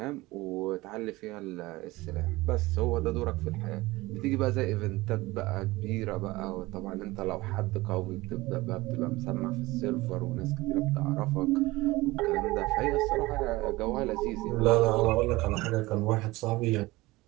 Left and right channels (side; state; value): left; quieter; 20.3 dB